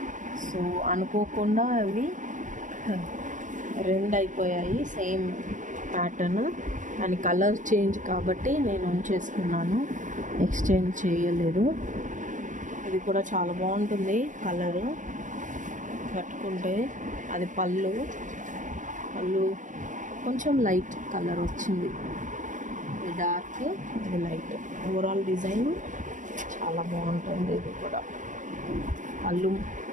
సో అనుకోకుండా అవి 2 అయిపోయాయి సేమ్ ప్యాటర్న్, కానీ కలర్ చేంజ్ కాబట్టి నేను ఉంచేసుకున్నాను, ఎక్స్చేంజ్ చేయలేదు. ఇది కూడా చాలా బాగుంటుంది కలరు. కట్టుకుంటే అది పళ్ళు కొంచెం లైట్ కలర్ వచ్చింది, ఇది డార్క్, ఇది లైట్. ఓవరాల్ డిజైన్ చాలా బాగుంటుంది. ఇది కూడా పళ్ళు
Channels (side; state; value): left; late; 0.37 ms